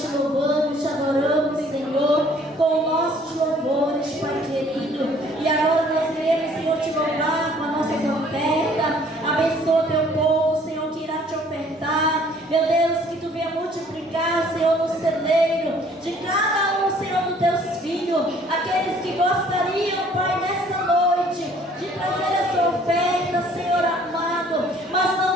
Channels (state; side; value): normal; both; correlation 0.57